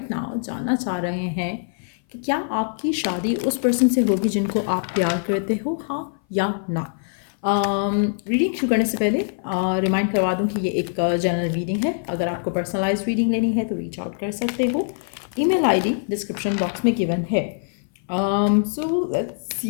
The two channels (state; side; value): silent; right; 58 dB below the other